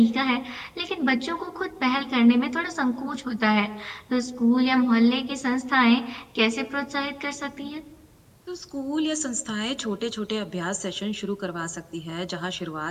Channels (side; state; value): both; identical; correlation 1.00